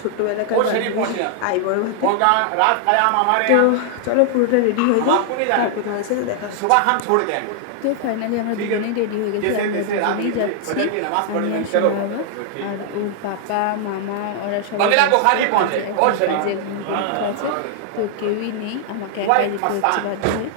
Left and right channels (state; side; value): different; both; correlation 0.00